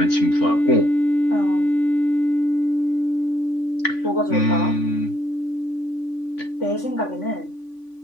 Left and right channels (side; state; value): right; late; 3.5 ms